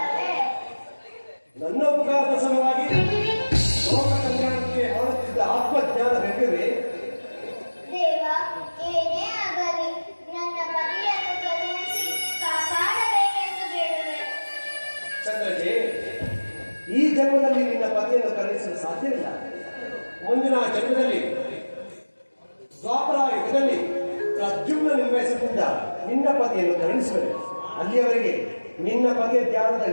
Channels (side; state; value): both; inverted; correlation -1.00